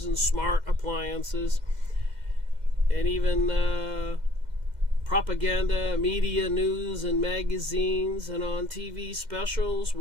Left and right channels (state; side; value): late; left; 2.1 ms